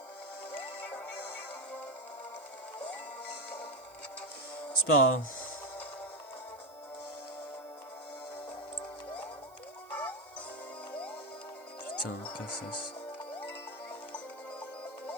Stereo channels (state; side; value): noise; right; hiss, 25 dB below the sound